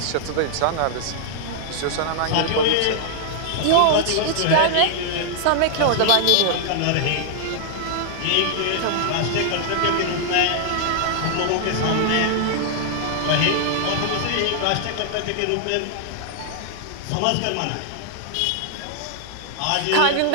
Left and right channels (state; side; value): different; both; correlation -0.01